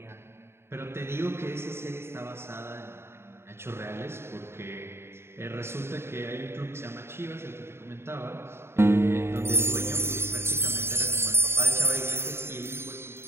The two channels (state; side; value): late; left; 0.12 ms